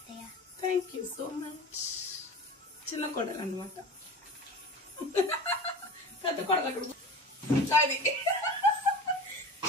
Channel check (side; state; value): both; normal; correlation 0.34